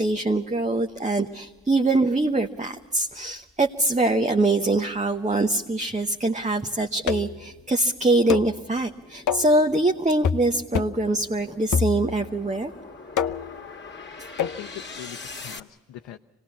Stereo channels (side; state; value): both; normal; correlation 0.52